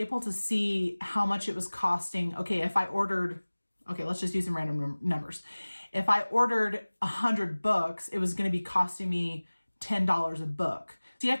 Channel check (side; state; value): both; inverted; correlation -1.00